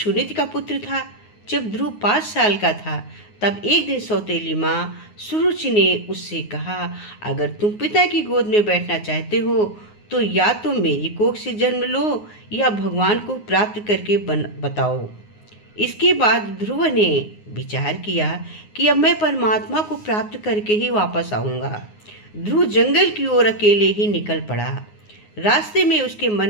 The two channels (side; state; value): right; late; 9.6 ms